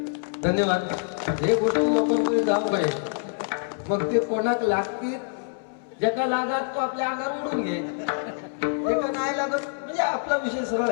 धन्यवाद. हे गोष्टी लोकांकडे जाऊ काय मग ते कोणाक लागतील ज्याला लागत तो आपल्या अंगावर उडून घे, एका नाही लागत म्हणजे आपला विषय सरळ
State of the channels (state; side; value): silent; right; 61 dB below the other